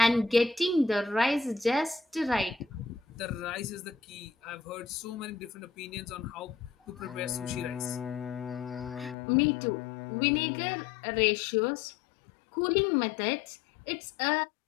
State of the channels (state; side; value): drops out; right; at 9.2 s